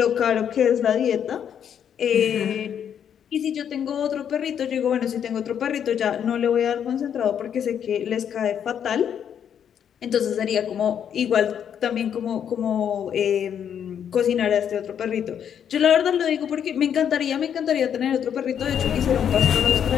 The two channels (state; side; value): quieter; right; 8.7 dB